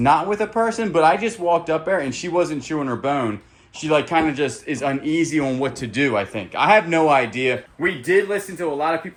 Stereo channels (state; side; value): identical; both; correlation 1.00